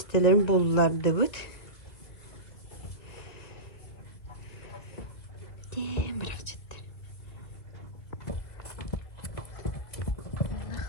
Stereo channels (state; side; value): late; right; 2.4 ms